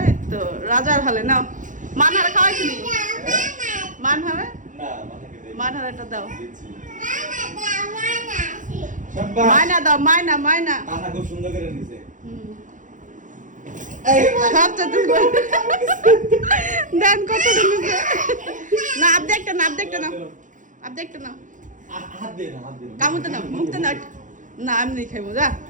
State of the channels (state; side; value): late; left; 0.37 ms